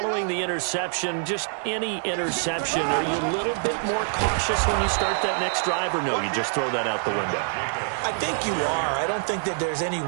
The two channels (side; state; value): left; silent; digital silence